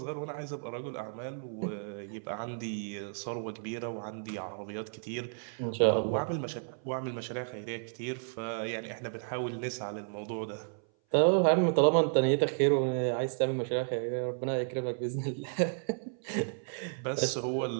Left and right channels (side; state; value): left; silent; 56 dB below the other